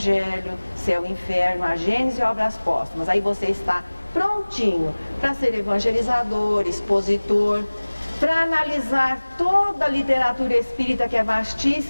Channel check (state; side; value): inverted; both; correlation -1.00